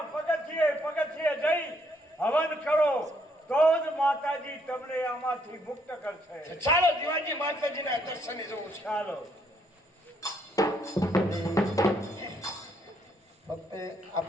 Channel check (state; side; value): normal; both; correlation 0.70